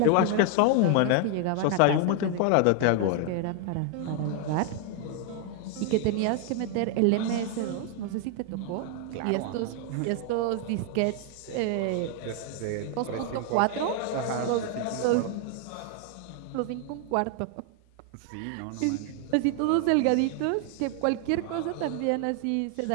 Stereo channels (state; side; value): different; both; correlation 0.00